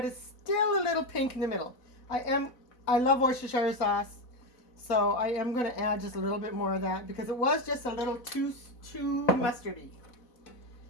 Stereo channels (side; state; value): right; late; 4.0 ms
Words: it's still a little pink in the middle. I love Worcestershire sauce, so I am going to add just a little bit more of that because it was just a little too mustardy.